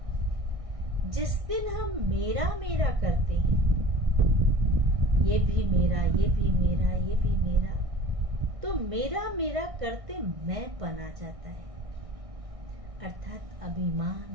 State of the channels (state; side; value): late; left; 1.6 ms